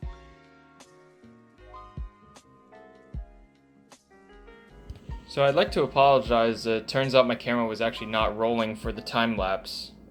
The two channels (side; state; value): both; identical; correlation 1.00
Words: So I'd like to apologize. It turns out my camera was actually not rolling for the time lapse.